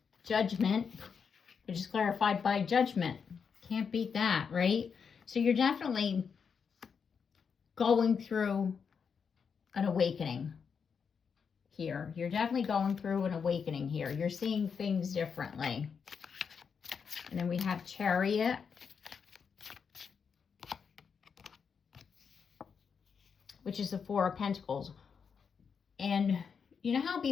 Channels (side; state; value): right; quieter; 6.3 dB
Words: Judgment, which is clarified by Judgment. Can't beat that, right? So you're definitely going through an awakening here. You're definitely going through an awakening here. You're seeing things differently. And then we have Chariot, which is the Four of Pentacles. And you know how